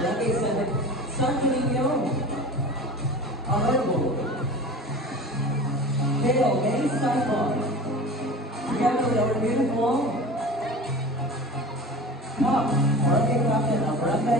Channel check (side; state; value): both; normal; correlation 0.35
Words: 7, Santo Niño, Honorable Hail May Simon, together with our beautiful top Barangay Captain of